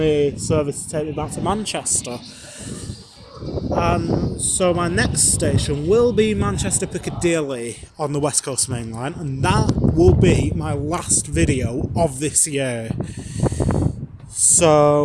service to take me back to Manchester. And so my next station will be Manchester Piccadilly on the West Coast Main Line, and that will be my last video of this year.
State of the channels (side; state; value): both; identical; correlation 1.00